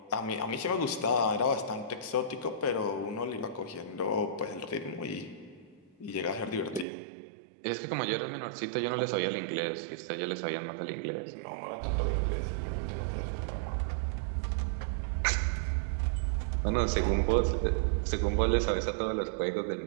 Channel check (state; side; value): drops out; left; at 6.9 s